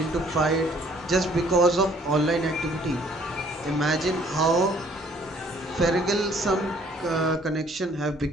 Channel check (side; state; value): both; normal; correlation 0.60